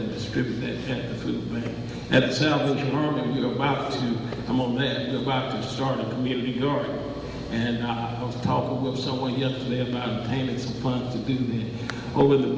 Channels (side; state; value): both; identical; correlation 1.00